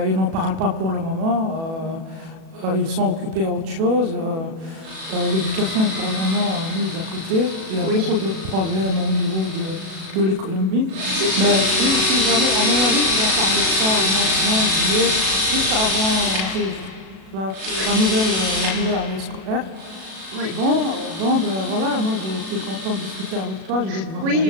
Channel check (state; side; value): late; left; 37 ms